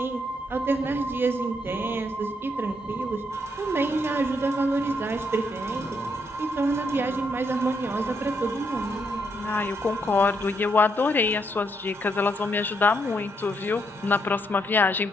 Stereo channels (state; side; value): normal; both; correlation 0.76